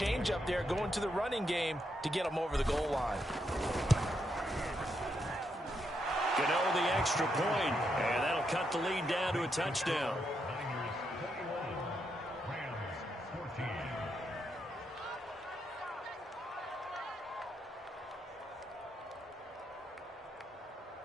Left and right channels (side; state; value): both; normal; correlation 0.80